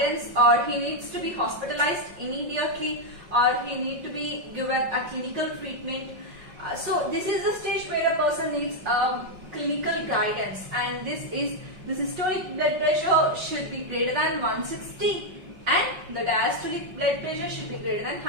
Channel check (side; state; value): left; late; 5.4 ms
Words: or he needs to be hospitalized immediately, or he needs to be given a clinical treatment. So, this is the stage where a person needs clinical guidance, and the systolic blood pressure should be greater than 160. And the diastolic blood pressure should be greater than